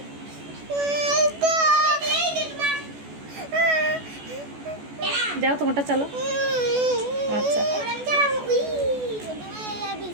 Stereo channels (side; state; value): left; late; 14 ms